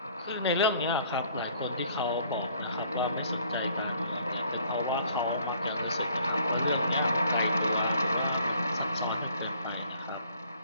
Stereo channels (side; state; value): both; inverted; correlation -0.59